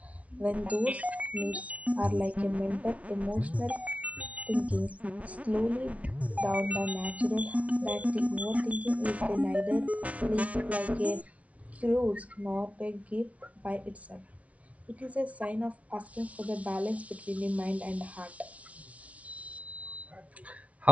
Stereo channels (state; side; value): late; left; 0.066 ms